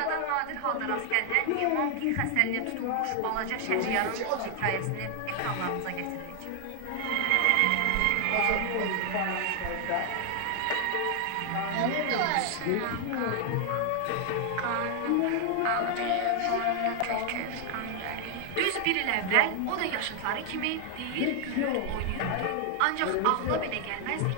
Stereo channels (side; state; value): both; different; correlation 0.00